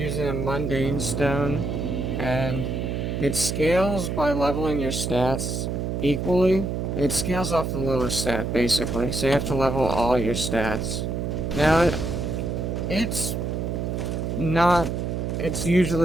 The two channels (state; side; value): noise; right; hum, 2 dB below the sound